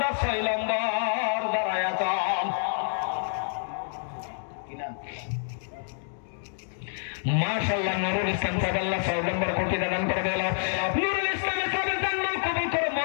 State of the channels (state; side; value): silent; right; digital silence